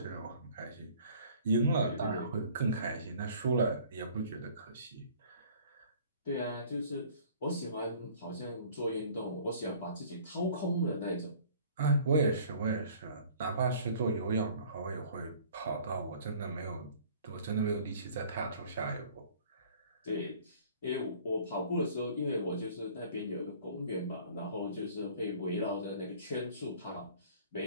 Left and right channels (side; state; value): both; inverted; correlation -0.51